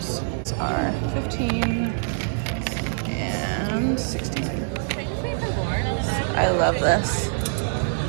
are 15 and 16. I love this.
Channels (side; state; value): left; silent; 62 dB below the other